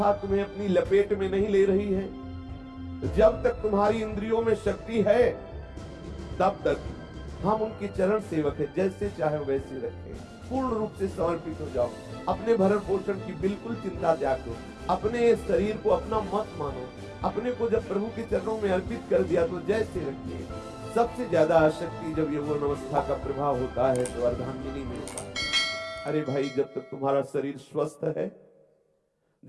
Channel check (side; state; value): both; identical; correlation 1.00